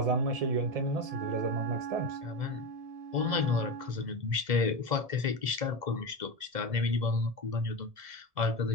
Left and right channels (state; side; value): late; left; 1.7 ms